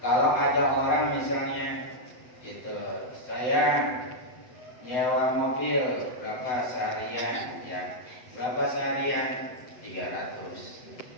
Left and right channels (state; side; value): late; right; 8.0 ms